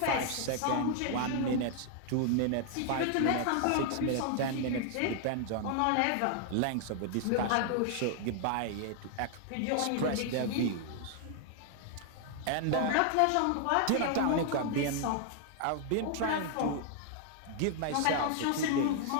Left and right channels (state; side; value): different; both; correlation 0.00